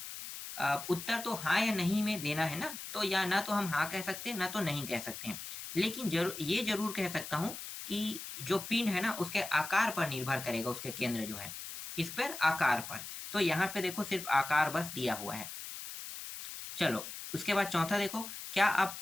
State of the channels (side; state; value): left; noise; hiss, 9 dB below the sound